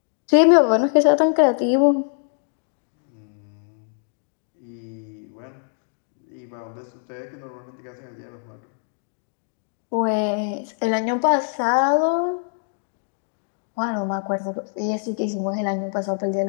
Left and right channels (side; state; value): right; silent; digital silence